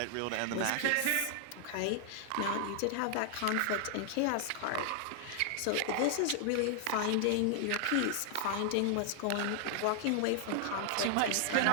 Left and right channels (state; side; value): different; both; correlation 0.00